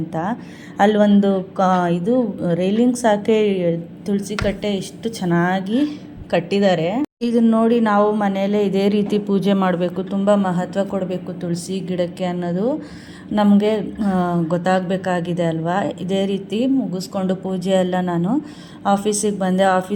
ಅಲ್ಲಿ ಒಂದು ಇದು ರೈಲಿಂಗ್ಸ್ ಹಾಕಿ ತುಳಸಿ ಕಟ್ಟೆ ಎಷ್ಟು ಚೆನ್ನಾಗಿ ಕಟ್ಟಿದ್ದಾರೆ. ಇದನ್ನ ನೋಡಿ ನಾವು ಮನೆಯಲ್ಲೇ ಇದೇ ರೀತಿ ಪೂಜೆ ಮಾಡಬೇಕು, ತುಂಬ ಮಹತ್ವ ಕೊಡಬೇಕು ತುಳಸಿ ಗಿಡಕ್ಕೆ ಅನ್ನೋದು ನಮಗೆ ಗೊತ್ತಾಗಬೇಕಾಗಿದೆ ಅಲ್ವಾ. ಇದೇ ರೀತಿ ಮುಗಿಸ್ಕೊಂಡು ಪೂಜೆ ಎಲ್ಲ ನಾನು ಆಫೀಸಿಗೆ ಬಂದೆ.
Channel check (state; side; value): identical; both; correlation 1.00